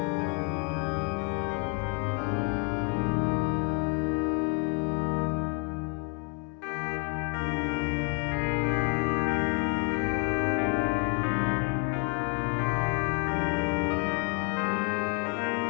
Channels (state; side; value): quieter; right; 33.2 dB